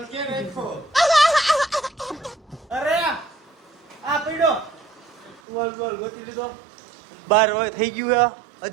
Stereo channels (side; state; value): left; drops out; at 5.4 s